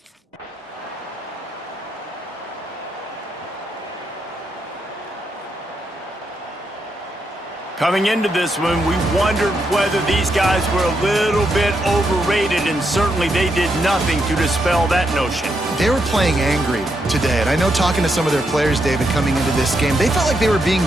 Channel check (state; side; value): normal; both; correlation 0.81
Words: Coming into this one, we wondered whether these guys were a little bit overrated, and certainly they did nothing to dispel that notion. They were playing angry today, and I know talking to some of their players, David, coming into this game, they felt like they were being